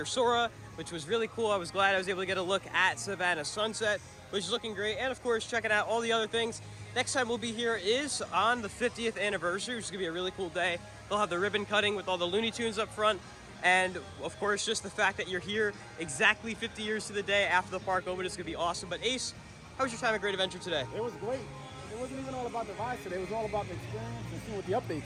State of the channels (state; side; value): identical; both; correlation 1.00